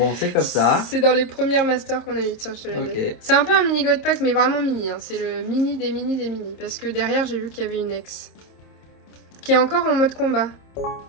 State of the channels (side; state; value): right; late; 26 ms